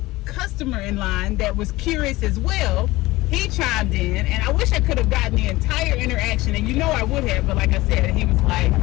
customer in line that was curious as well. He chimed in, and I wish I could have gotten the entire interaction, and you know I would have, but like I said, he was like,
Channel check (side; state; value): right; quieter; 19.3 dB